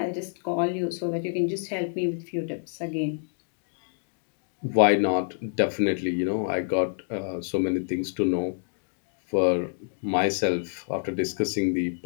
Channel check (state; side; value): silent; right; digital silence